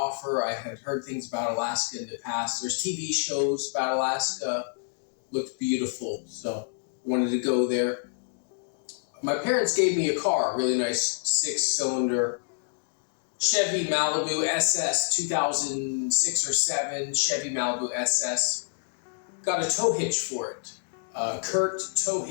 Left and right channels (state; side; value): silent; right; digital silence